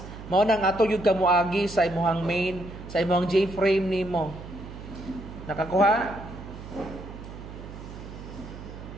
Mao nang ato yung kamuagi sa imong main, sa imong J-frame nimo. Nakakuha?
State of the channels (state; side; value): noise; right; hum, 13 dB below the sound